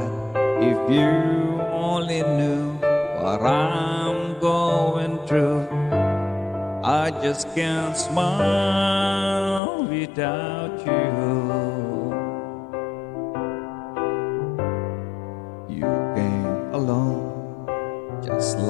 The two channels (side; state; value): right; drops out; at 9.6 s